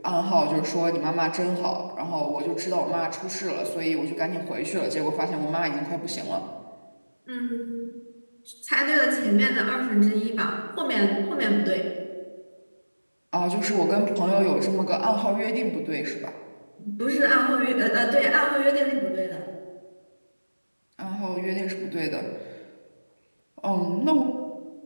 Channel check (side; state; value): both; inverted; correlation -1.00